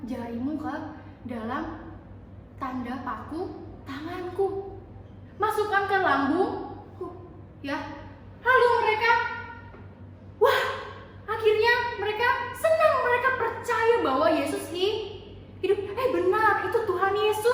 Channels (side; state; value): both; identical; correlation 1.00